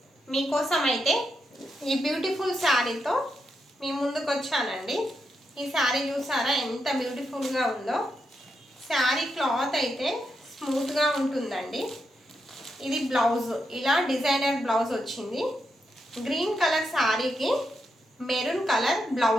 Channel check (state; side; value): normal; both; correlation 0.83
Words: మీకోసం అయితే ఈ బ్యూటిఫుల్ శారీతో మీ ముందుకు వచ్చానండి. ఈ శారీ చూసారా ఎంత బ్యూటిఫుల్గా ఉందో. శారీ క్లాత్ అయితే స్మూత్గా ఉంటుందండి. ఇది బ్లౌజ్, ఇలా డిజైనర్ బ్లౌజ్ వచ్చింది. గ్రీన్ కలర్ శారీకి మెరూన్ కలర్